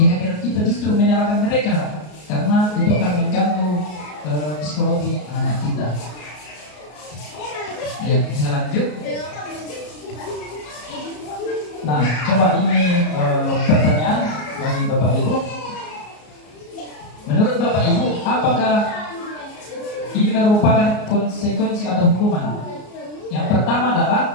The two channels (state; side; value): late; right; 33 ms